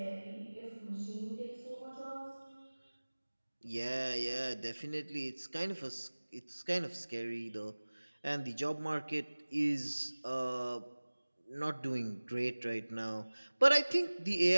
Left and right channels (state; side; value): inverted; both; correlation -1.00